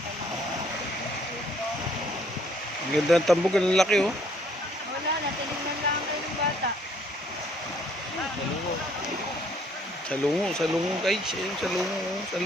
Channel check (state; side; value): normal; both; correlation 0.63